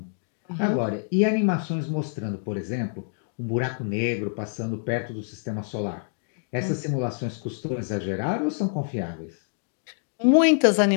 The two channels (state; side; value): silent; right; digital silence